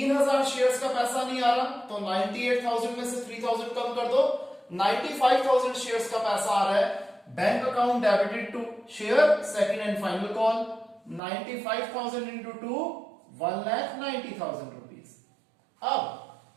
शेयर्स का पैसा नहीं आ रहा, तो 98,000 में से 3000 कम कर दो, 95,000 शेयर्स का पैसा आ रहा है bank account debited to share second and final call, 95,000 into 2 1,90,000 rupees. अब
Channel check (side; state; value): left; drops out; at 11.2 s